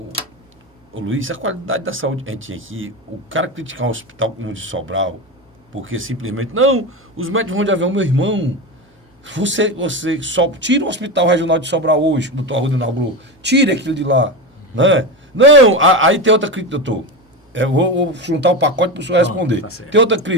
Luiz, a qualidade da saúde que a gente tinha aqui, o cara criticar um hospital como o de Sobral, porque simplesmente, não, os médicos vão de avião, meu irmão, você só tira o hospital regional de Sobral hoje, o doutor Arruda inaugurou, tire aquilo de lá, né? Não, aí tem outra crítica, doutor, eu vou juntar o pacote para o senhor responder. Tá, tem outra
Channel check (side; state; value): both; normal; correlation 0.19